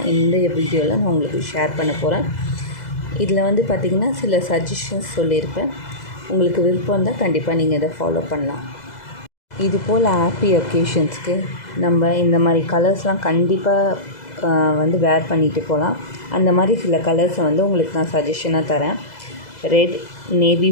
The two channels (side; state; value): right; late; 2.0 ms